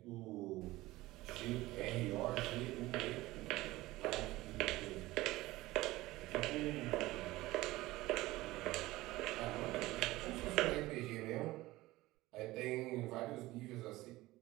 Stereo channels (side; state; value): left; quieter; 18.5 dB